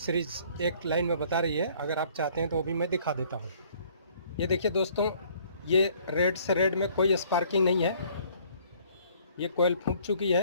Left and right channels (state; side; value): inverted; both; correlation -0.59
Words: एक लाइन में बता रही है। अगर आप चाहते हैं तो वो भी मैं दिखा देता हूँ। ये देखिए दोस्तों, ये रेड से रेड में कोई स्पार्किंग नहीं है। ये कोयल फूंक चुकी